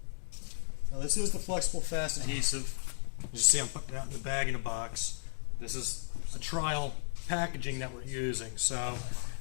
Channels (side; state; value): right; silent; digital silence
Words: This is the flexible fast adhesive. You see I'm putting it out in the bag in a box. This is a trial packaging that we're using. So,